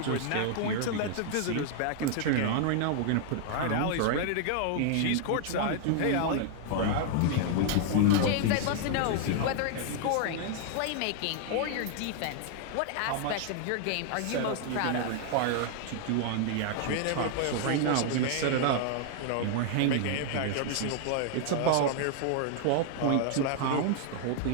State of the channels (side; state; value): both; different; correlation 0.00